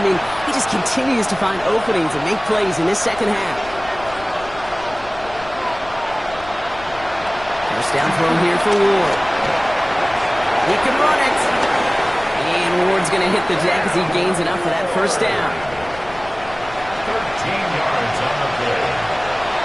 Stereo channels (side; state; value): left; noise; rumble, 18 dB below the sound